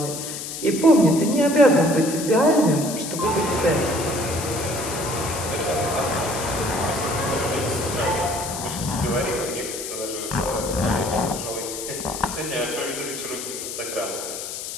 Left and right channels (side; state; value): left; noise; hiss, 7 dB below the sound